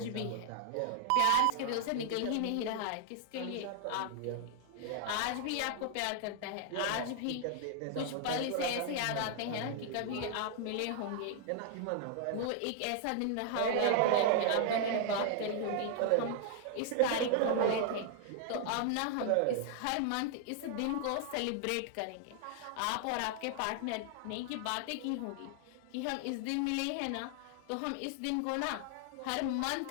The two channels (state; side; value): different; both; correlation 0.00